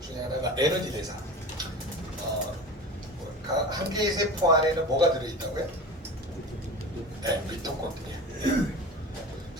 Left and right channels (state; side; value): normal; both; correlation 0.32